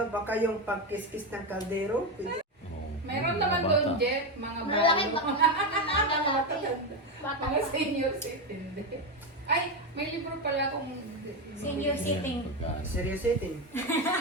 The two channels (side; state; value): both; normal; correlation 0.11